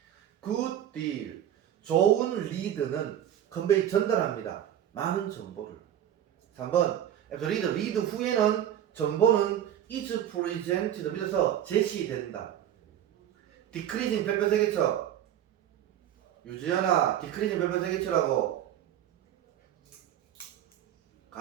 good deal 좋은 리드는 컨베이 전달합니다. 많은 정보를. 3번 리드 후에는 정보는 is presented 밑에서 제시된다. decreasing 별표 세개쳐 유지연아 decreasing 별표 세개쳐라고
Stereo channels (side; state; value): left; quieter; 10.8 dB